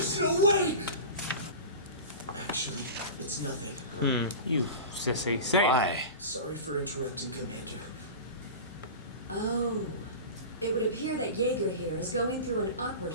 no way! Actually, it's nothing. You sissy. Say it. Why? Sorry for interrupting, Commander. Oh. It would appear that Jaeger here is going through an awkward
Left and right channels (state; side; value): inverted; both; correlation -0.31